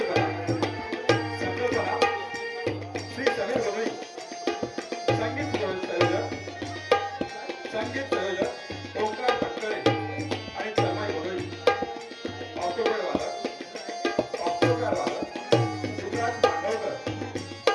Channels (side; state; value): both; identical; correlation 1.00